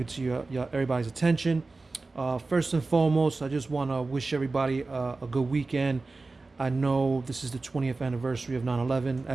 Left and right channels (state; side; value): quieter; left; 3.6 dB